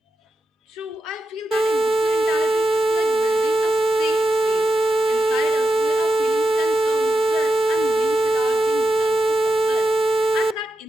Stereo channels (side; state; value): both; normal; correlation 0.88